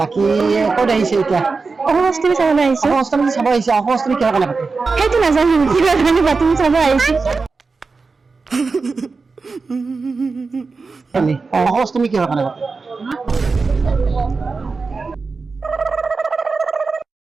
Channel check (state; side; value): quieter; left; 4.3 dB